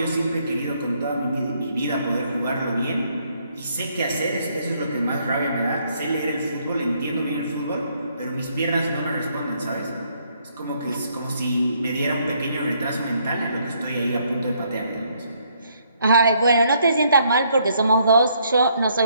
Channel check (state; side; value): inverted; both; correlation -0.70